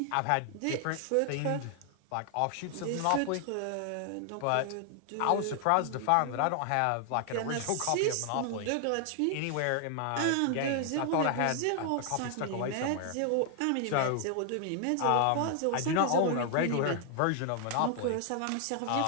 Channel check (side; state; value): both; different; correlation 0.00